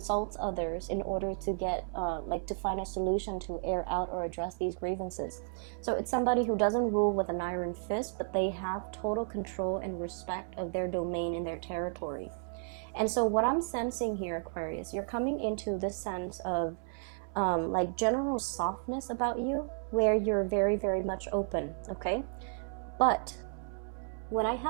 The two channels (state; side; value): silent; left; 56 dB below the other